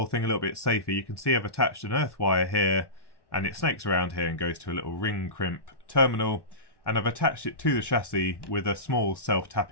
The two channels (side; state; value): right; late; 1.1 ms